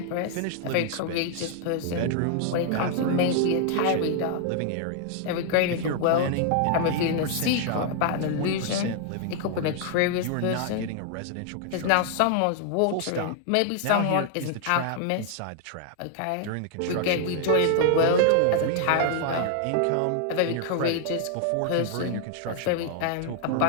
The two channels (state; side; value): different; both; correlation 0.00